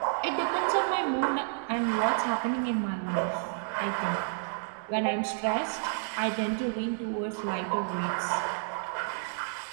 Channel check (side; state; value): left; silent; digital silence